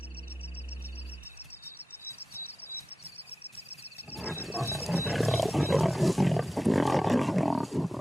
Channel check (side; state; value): both; normal; correlation 0.93